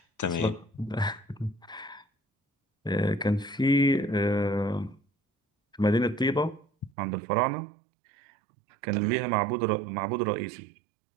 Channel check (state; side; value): drops out; left; at 6.9 s